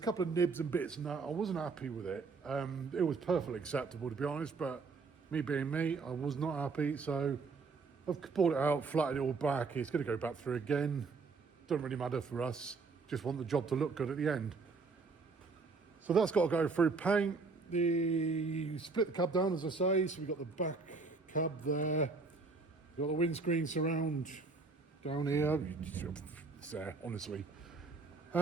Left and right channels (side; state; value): left; quieter; 4.3 dB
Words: couple of nibs and bits and that. I wasn't happy with it. It was perfectly acceptable, to be honest, but me being me, I was not happy. So I've pulled it out, flattened it all back. It's going to go back through again. Doesn't really matter for us. Just want the job to look good at the end. So that's got to go through paint. Split the cab down, as I say. So we've got the back cab there. We've got the windscreen surround down here. It's there, honestly.